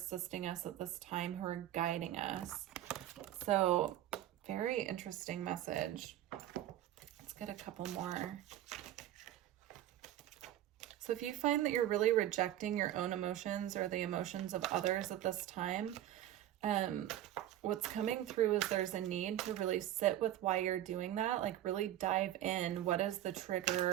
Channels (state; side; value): quieter; left; 12.8 dB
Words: us at this time, who are guiding us. So, very interesting message. Let's get a couple more. So if you find that you're really rejecting your own emotions or the emotions of others at this time, what's coming through is there's a need to really sit with why you're doing that, like really dive in. What is the